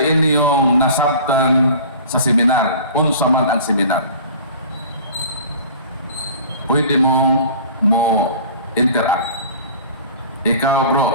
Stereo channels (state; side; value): inverted; both; correlation -0.42